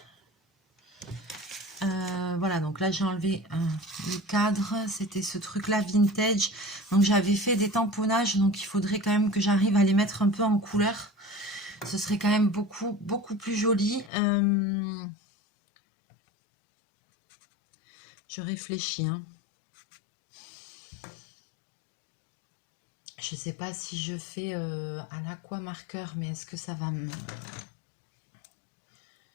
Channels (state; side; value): drops out; right; at 14.1 s